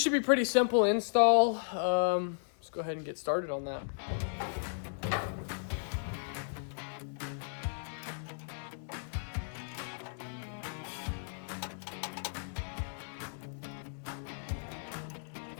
should be pretty simple install. Let's go ahead and get started on that.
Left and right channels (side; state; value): right; silent; 54 dB below the other